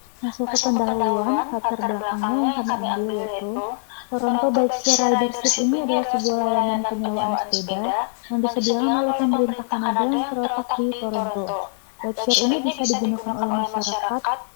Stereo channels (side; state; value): right; silent; 64 dB below the other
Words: Masuk ke pendahuluan, latar belakangnya yang kami ambil yaitu Toronto Bikeshare Ridership ini adalah sebuah layanan penyewaan sepeda yang disediakan oleh pemerintah Kanada yang terletak di Toronto. Bikeshare ini bisa digunakan oleh masyarakat